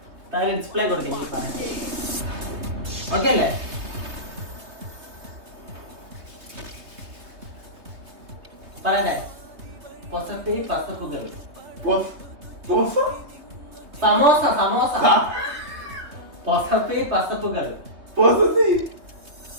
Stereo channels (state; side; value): late; left; 3.2 ms